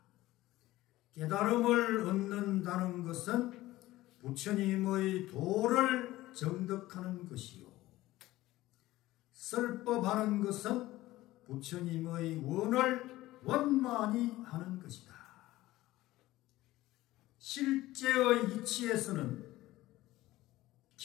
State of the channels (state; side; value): quieter; right; 16.9 dB